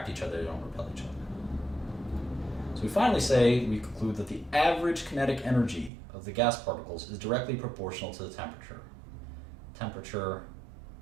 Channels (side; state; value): left; drops out; at 5.9 s